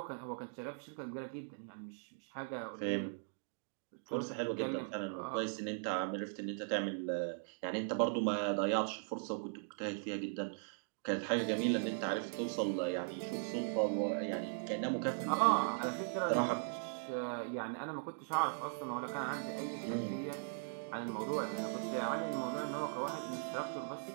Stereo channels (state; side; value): silent; left; digital silence